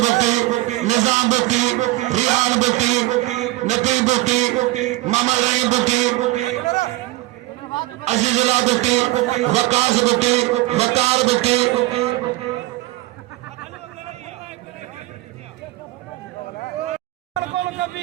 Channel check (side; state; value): left; quieter; 18.9 dB